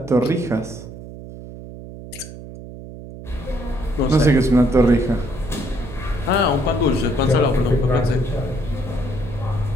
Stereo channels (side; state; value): right; noise; hum, 13 dB below the sound